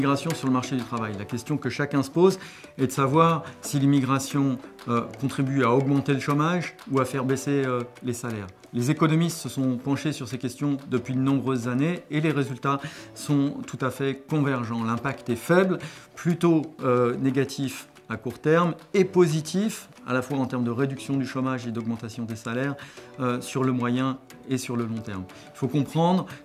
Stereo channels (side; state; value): both; identical; correlation 1.00